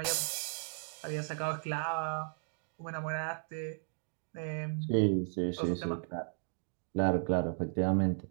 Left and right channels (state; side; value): silent; left; digital silence